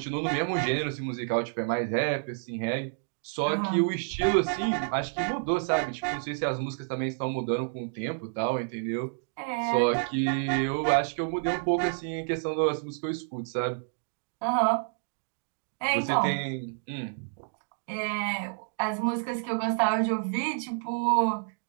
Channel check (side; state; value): left; silent; digital silence